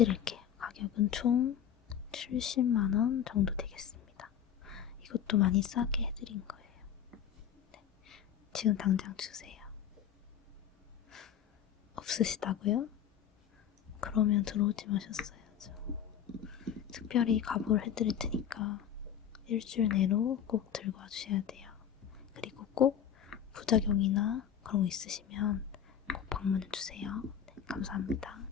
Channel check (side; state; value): right; quieter; 9.0 dB